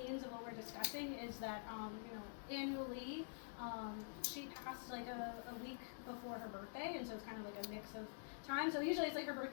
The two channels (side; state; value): right; silent; digital silence